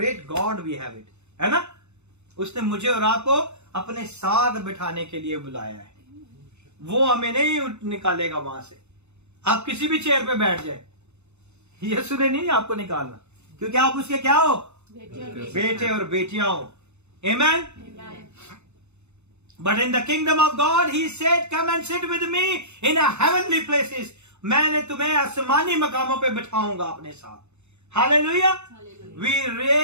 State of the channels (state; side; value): late; left; 0.82 ms